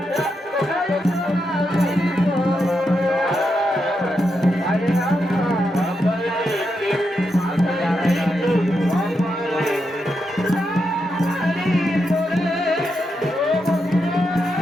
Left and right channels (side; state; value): both; normal; correlation 0.84